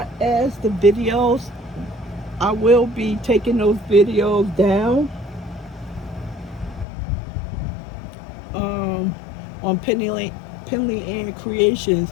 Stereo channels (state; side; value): drops out; right; at 6.9 s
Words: as the videos, I will be taking those videos down on Penley-Ann